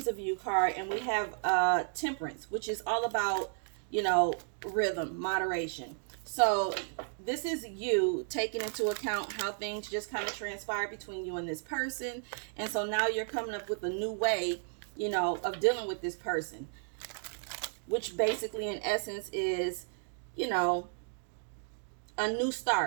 of You card, and we have Temperance, which is all about, you know, rhythm, moderation. So this is you taking into account how things just kind of transpire between you and this person. And so now you're coming up with a new way, you know, of dealing with this person, which basically in essence is, you know, a new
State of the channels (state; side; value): silent; left; digital silence